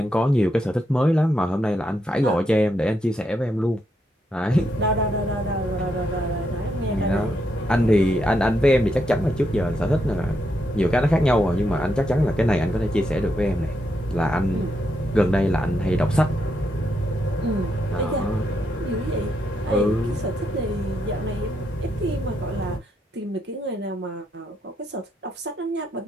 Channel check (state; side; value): normal; both; correlation 0.80